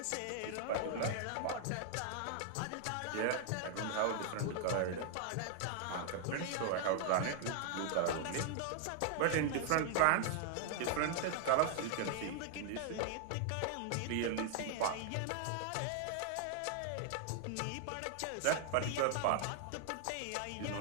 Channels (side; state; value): both; different; correlation 0.00